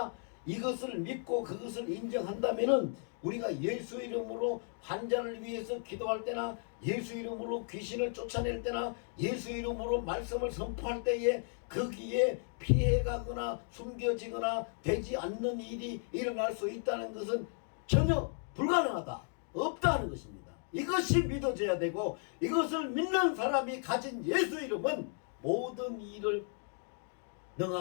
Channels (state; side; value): silent; right; 55 dB below the other